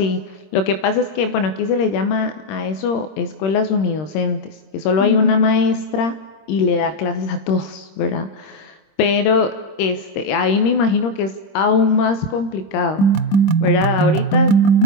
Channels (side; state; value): right; late; 25 ms